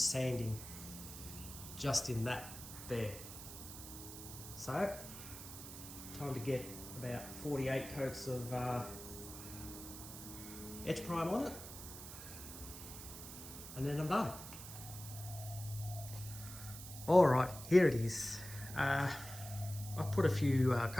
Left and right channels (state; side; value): noise; right; hiss, 11 dB below the sound